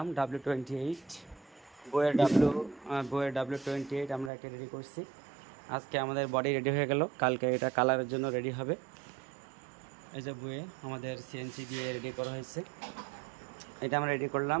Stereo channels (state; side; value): drops out; left; at 4.3 s